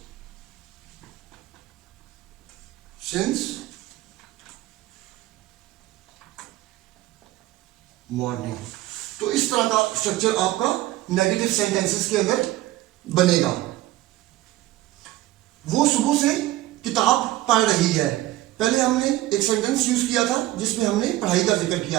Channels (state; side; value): quieter; left; 16.1 dB